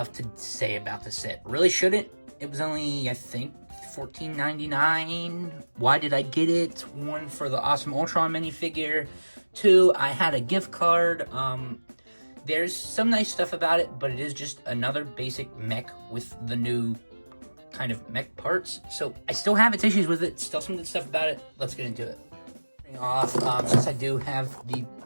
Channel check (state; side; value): inverted; both; correlation -1.00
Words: to say about the set. Really shouldn't. It was only, I think, $14.99. Why did I get it? One, for the awesome Ultron minifigure. Two, I had a gift card. There's some nice stuff about it, but it is just another basic mech with the new kind of mech parts. So I still have its issues with it. Still some good stuff about it. Let's get into it. Off, since I do have the